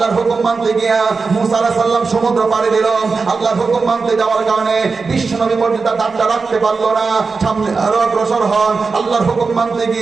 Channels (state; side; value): quieter; left; 4.5 dB